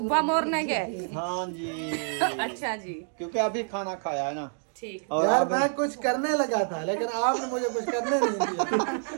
मॉर्निंग है? हाँ जी। अच्छा जी, क्योंकि अभी खाना खाया है ना। ठीक। और यार अब मैं कुछ करने लगा था, लेकिन आपने मुझे कुछ करने नहीं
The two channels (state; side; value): silent; left; 57 dB below the other